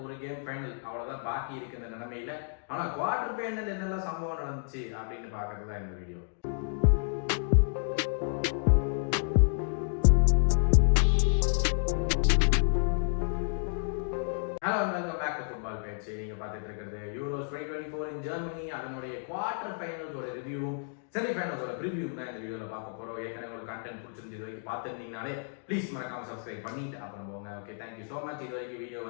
ஒரு கேம் ஃபைனல் அவ்வளோதான் பாக்கி இருக்கு இந்த நிலைமையில. ஆனால் குவார்டர் ஃபைனல் என்னெல்லாம் சம்பவம் நடந்துச்சு அப்படின்னு பார்க்கறது தான் இந்த video. Hello, welcome back to football பேச்சு. நீங்க பார்த்துட்டு இருக்கிறது யூரோஸ் 2024 இன் ஜெர்மனி. அதனுடைய குவார்டர் ஃபைனல்ஸோட ரிவ்யூவும் செமிஃபைனல்ஸோட ப்ரிவியூவும் தான் இந்த வீடியோவில் பார்க்க போகிறோம். ஏற்கனவே உங்களுக்கு கண்டென்ட் பிடிச்சிருந்து இது வரைக்கும் பார்த்துருந்தீங்கனாலே ப்ளீஸ் மறக்காம சப்ஸ்கிரைப் பண்ணிட்டு அப்புறம் போங்க. Okay, thank you so much. இது வரைக்கும் வீடியோ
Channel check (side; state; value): right; silent; digital silence